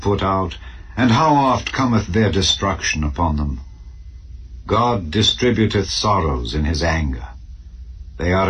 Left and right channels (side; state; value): both; identical; correlation 1.00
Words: out, and how oft cometh their destruction upon them? God distributeth sorrows in his anger. They